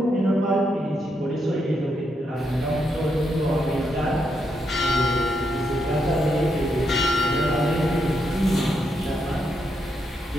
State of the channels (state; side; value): normal; both; correlation 0.80